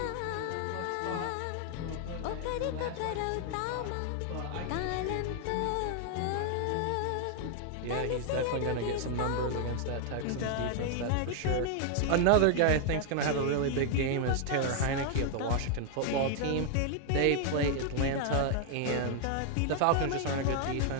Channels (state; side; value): different; both; correlation 0.00